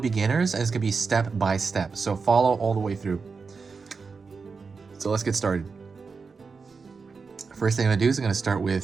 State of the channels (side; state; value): left; quieter; 4.9 dB